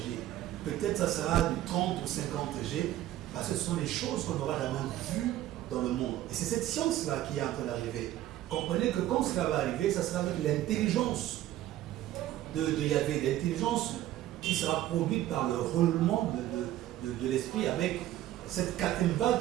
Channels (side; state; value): left; quieter; 13.8 dB